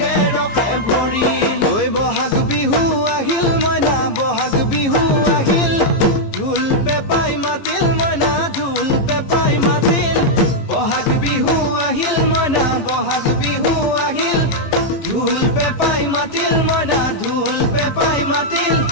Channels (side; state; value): right; late; 15 ms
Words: ৰখে ভৰিল ঐ বহাগ বিহু আহিল মইনা বহাগ বিহু আহিল ঢোল পেপাই মাতিল মইনা ঢোল পেপাই মাতিল বহাগ বিহু আহিল মইনা বহাগ বিহু আহিল ঢোল পেপাই মাতিল মইনা ঢোল পেপাই মাতিল